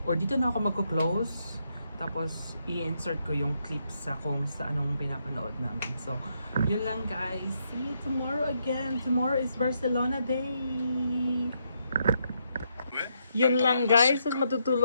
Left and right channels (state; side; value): inverted; both; correlation -0.78